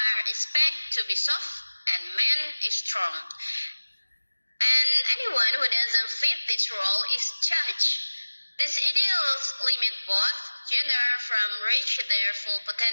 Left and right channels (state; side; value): inverted; both; correlation -1.00